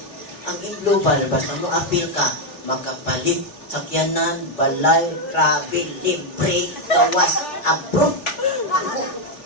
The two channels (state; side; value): late; right; 3.4 ms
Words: ang Imlubal, basta mo apil ka, makapalit sakyanan, balay, travel, libre, gawas, abroad.